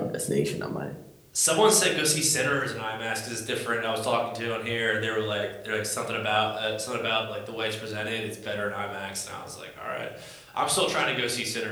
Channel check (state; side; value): identical; both; correlation 1.00